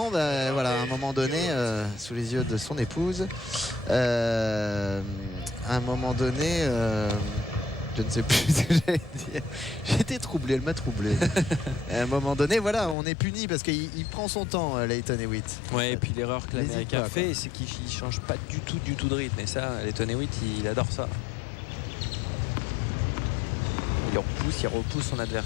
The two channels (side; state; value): right; drops out; at 13.0 s